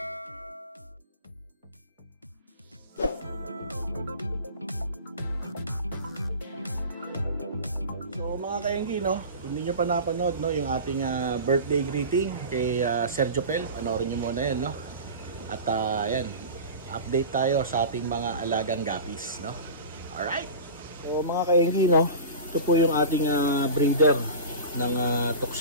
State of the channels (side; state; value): both; inverted; correlation -0.33